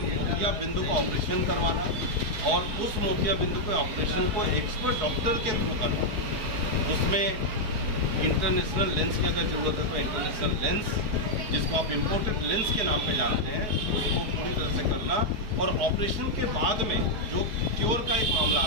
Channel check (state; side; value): late; left; 4.7 ms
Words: बिंदु का ऑपरेशन करवाना और उस मोतिया बिंदु के ऑपरेशन को एक्सपर्ट डॉक्टर के थ्रू करवाना। उसमें इंटरनेशनल लेंस की अगर ज़रूरत है तो इंटरनेशनल लेंस, जिसको आप इम्पोर्टेड लेंस के नाम पे जानते हैं, उसको पूरी तरह से करना। और ऑपरेशन के बाद में जो क्योर का एक मामला